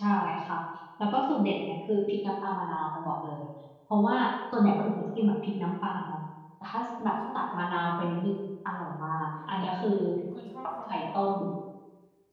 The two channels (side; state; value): both; identical; correlation 1.00